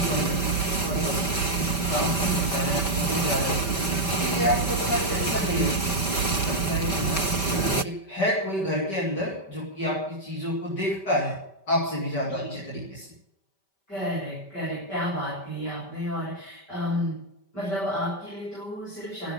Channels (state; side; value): late; right; 5.1 ms